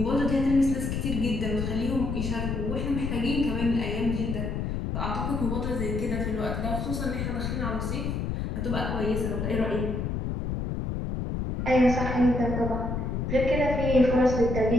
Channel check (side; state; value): left; noise; rumble, 2 dB below the sound